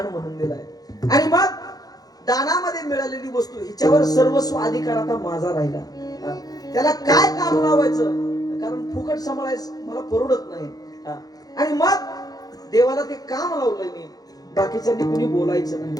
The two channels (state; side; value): late; right; 0.18 ms